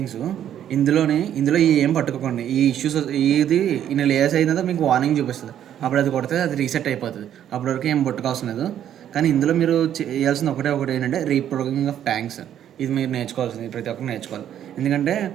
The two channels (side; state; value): left; quieter; 10.4 dB